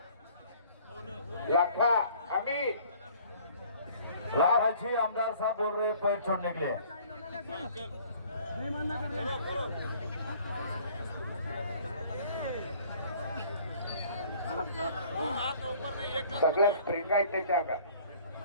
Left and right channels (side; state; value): both; inverted; correlation -0.54